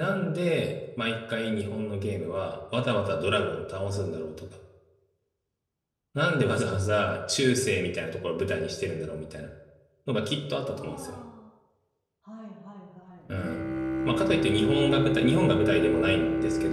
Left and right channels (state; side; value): identical; both; correlation 1.00